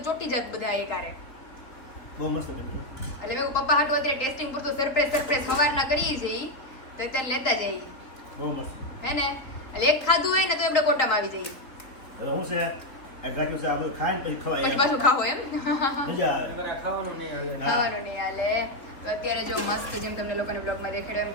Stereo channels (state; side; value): late; right; 3.3 ms